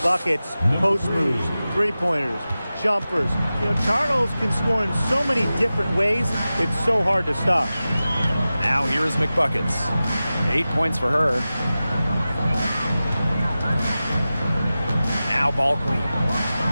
post moves, three-pointers, jumpers. You know, Charles can score in so many different ways, it's so hard to stop. Now here is McBuckets. 8 points for her. Now ball queen.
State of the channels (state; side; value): inverted; both; correlation -0.95